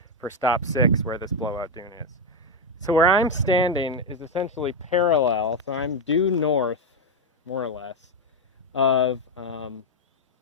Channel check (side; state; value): both; normal; correlation 0.05